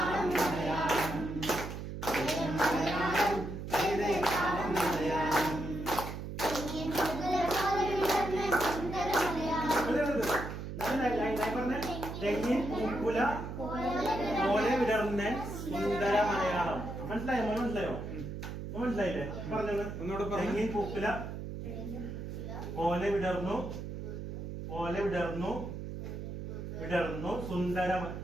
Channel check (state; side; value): noise; right; hum, 7 dB below the sound